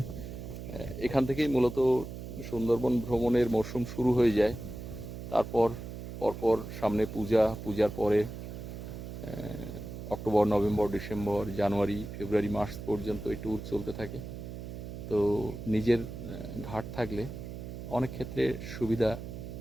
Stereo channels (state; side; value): noise; right; hum, 9 dB below the sound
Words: এখান থেকেই মূলত সুন্দরবন ভ্রমণের মরশুম শুরু হয়ে যায়। তারপর পরপর সামনে পূজা, পূজার পরে অক্টোবর, নভেম্বর, ডিসেম্বর, জানুয়ারি, ফেব্রুয়ারি, মার্চ পর্যন্ত এই ট্যুর চলতে থাকে। তো নিজের ঘাট থাকলে অনেক ক্ষেত্রে সুবিধা